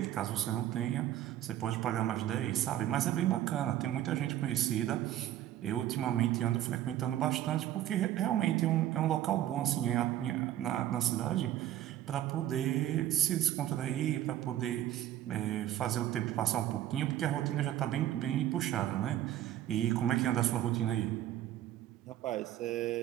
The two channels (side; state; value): left; quieter; 12.6 dB